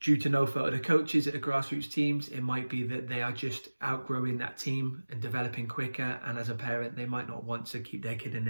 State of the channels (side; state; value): both; inverted; correlation -1.00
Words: due to no fault of the coaches at the grassroots teams, it might be that they are just outgrowing that team and developing quicker, and as a parent they might not want to keep their kid in